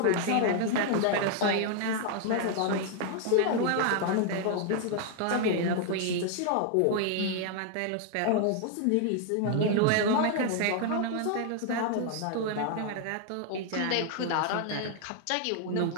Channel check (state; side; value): different; both; correlation 0.00